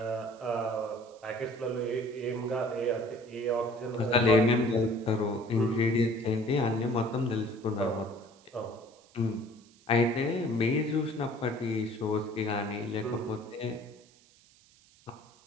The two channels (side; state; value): right; noise; hiss, 28 dB below the sound